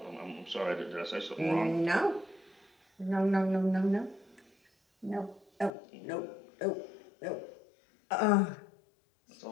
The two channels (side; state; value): right; drops out; at 5.7 s